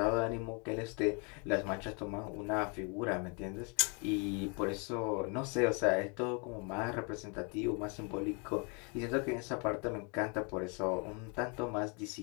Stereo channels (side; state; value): right; quieter; 34.3 dB